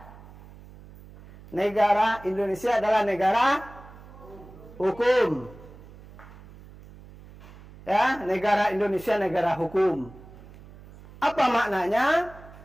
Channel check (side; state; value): right; noise; hum, 20 dB below the sound